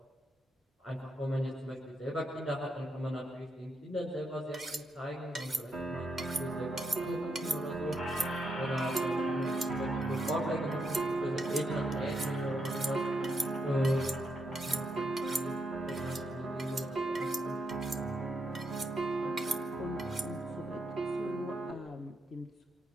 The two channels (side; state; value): both; normal; correlation 0.80